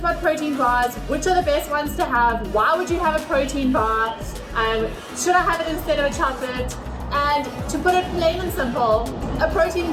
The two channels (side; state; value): both; identical; correlation 1.00